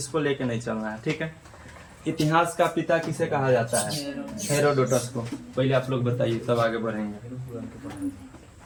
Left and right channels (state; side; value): identical; both; correlation 1.00